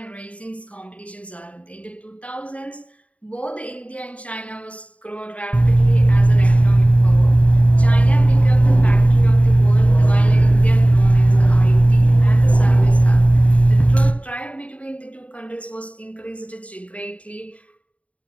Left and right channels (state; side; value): late; right; 0.066 ms